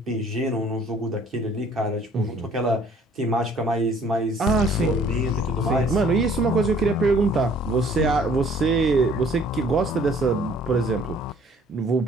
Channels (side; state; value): both; normal; correlation 0.56